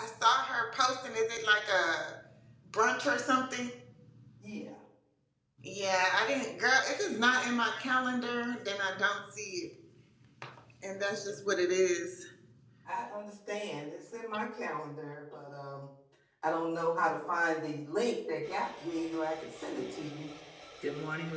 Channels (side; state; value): both; identical; correlation 1.00